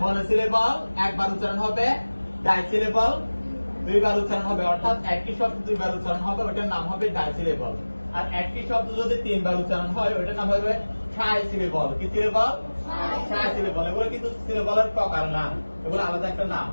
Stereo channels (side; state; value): both; inverted; correlation -1.00